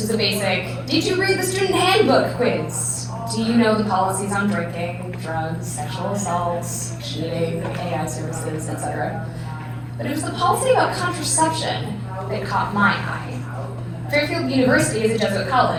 was a basic, did you read the student handbook quiz? Do you know the policies on drinking, drugs, sexual assaults, cheating, AI services, etc.? But it was the policy about contraception that caught my eye. Fairfield University is a Jesuit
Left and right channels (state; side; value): identical; both; correlation 1.00